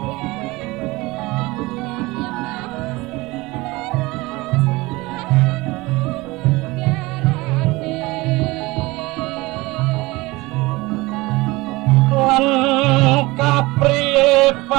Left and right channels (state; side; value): quieter; left; 21.8 dB